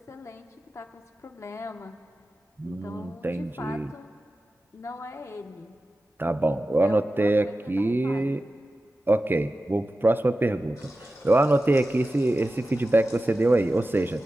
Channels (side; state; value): both; normal; correlation 0.94